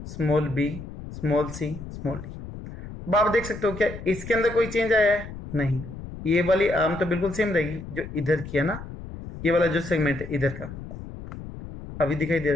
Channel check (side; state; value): left; noise; rumble, 11 dB below the sound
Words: small B, small C, small D. अब आप देख सकते हो क्या इसके अंदर कोई चेंज आया है, नहीं। ये वाली आर्म तो बिल्कुल सेम रहेगी जो इधर की है ना, ये वाला जो सेगमेंट है इधर का अभी दिखाई दे